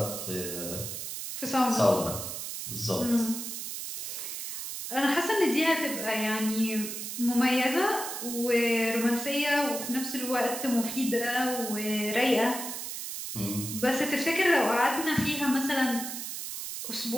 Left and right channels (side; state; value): right; noise; hiss, 6 dB below the sound